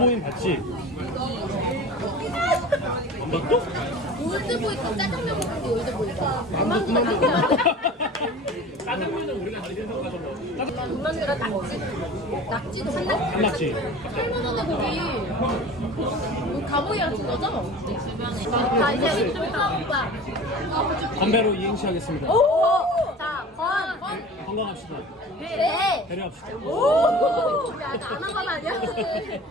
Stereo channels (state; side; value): normal; both; correlation 0.39